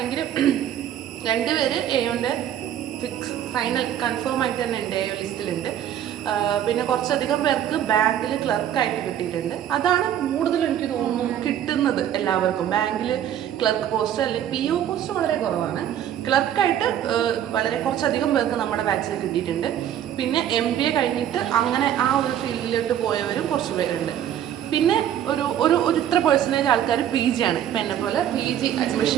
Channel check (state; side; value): quieter; left; 10.6 dB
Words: 2 പേര് AOൻ്റെ ഫൈനൽ കൺഫേം ആയിട്ട് തന്നെ ഉണ്ട്, AO ലിസ്റ്റിലുണ്ട്. പിന്നെ കുറച്ചധികം പേർക്ക് ബാങ്കിൽ ക്ലർക്കായിട്ട് കിട്ടിയിട്ടുണ്ട്. അതാണ് കൂടുതൽ എനിക്ക് തോന്നുന്നു കിട്ടുന്നത് എല്ലാവർക്കും. ബാങ്കിൽ ക്ലർക്ക് പോസ്റ്റ് അല്ലെങ്കിൽ PO പോസ്റ്റ് വളരെ കുറവാണ്. ക്ലർക്കായിട്ട് വളരെ കുറച്ചധികം പേർക്ക് നമ്മുടെ ബാച്ചിൽ കിട്ടിയിട്ടുണ്ട്. പിന്നെ MBA കഴിഞ്ഞിട്ട് അങ്ങനെ ആ ഒരു ഫീൽഡിലോട്ട് പോയവരും കുറച്ച് പേരുണ്ട്. പിന്നെ ഒരു ഇത്ര പെർസെൻറ്റേജ് ആൾക്കാർ PG ആണ്. ഇപ്പം എന്നെ പോലെ PG